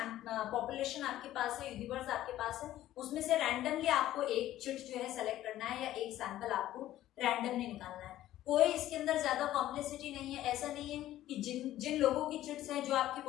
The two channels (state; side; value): quieter; right; 13.8 dB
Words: पॉपुलेशन आपके पास है, यूनिवर्स आपके पास है, उसमें से रैंडमली आपको एक चिट जो है सेलेक्ट करना है या एक सैंपल आपको रैंडमली निकालना है। कोई इसके अंदर ज्यादा कॉम्प्लेक्सिटी नहीं है। ऐसा नहीं है कि जिन लोगों की चिट्स हैं, जो आपकी